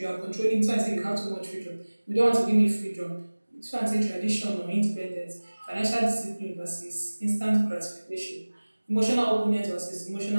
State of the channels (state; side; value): inverted; both; correlation -1.00